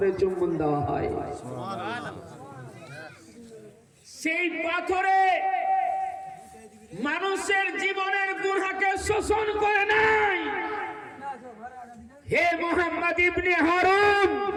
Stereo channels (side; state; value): both; identical; correlation 1.00